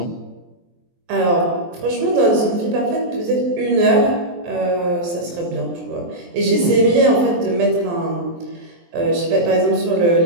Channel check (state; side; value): late; left; 23 ms